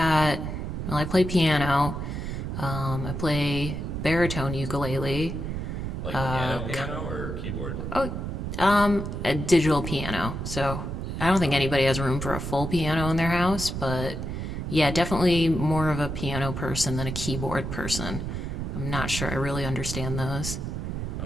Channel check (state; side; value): noise; right; rumble, 4 dB below the sound